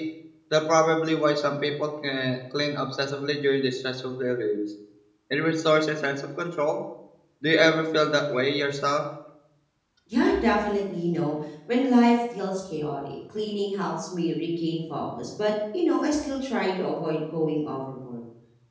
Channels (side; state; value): both; identical; correlation 1.00